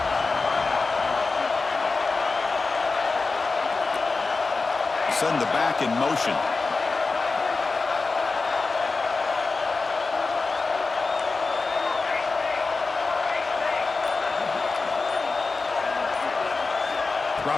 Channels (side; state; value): right; quieter; 4.0 dB